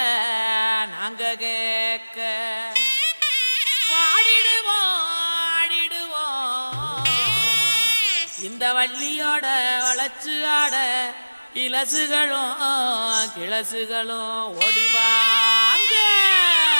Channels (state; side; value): inverted; both; correlation -1.00